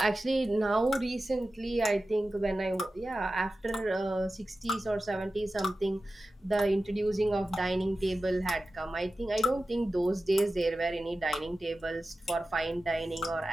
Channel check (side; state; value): both; normal; correlation 0.94